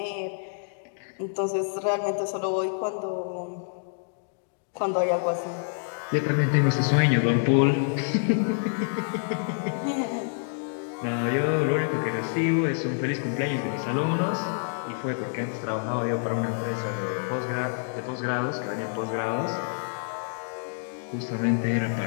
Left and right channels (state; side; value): silent; right; digital silence